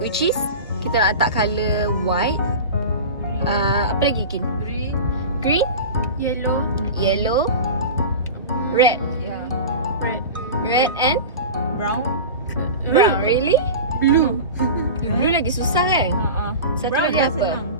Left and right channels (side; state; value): both; inverted; correlation -0.30